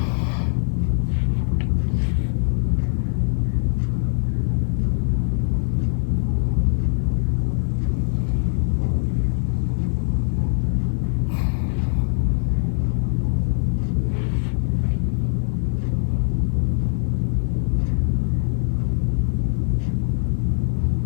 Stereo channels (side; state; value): right; silent; digital silence